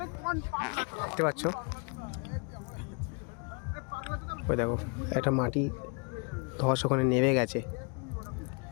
দেখতে পাচ্ছ। ওই দেখো একটা মাটি ধস ওখানে নেমে গেছে,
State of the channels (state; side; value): quieter; right; 34.4 dB